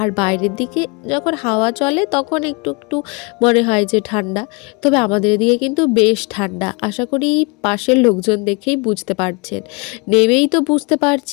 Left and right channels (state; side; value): quieter; right; 29.6 dB